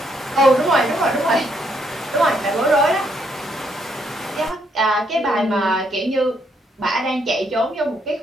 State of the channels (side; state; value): both; normal; correlation 0.73